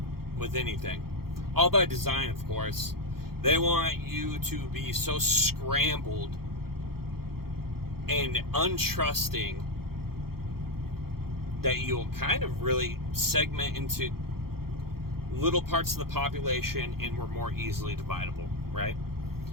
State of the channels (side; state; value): left; late; 0.94 ms